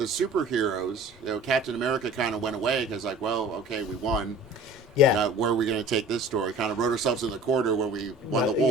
superheroes, Captain America kind of went away because like, well, okay, we won. Yeah. Now, where are we going to take this story? Kind of wrote ourselves in the corner when we won the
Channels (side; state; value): both; normal; correlation 0.45